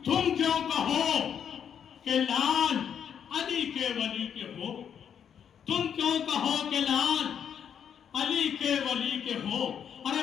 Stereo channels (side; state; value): right; quieter; 8.2 dB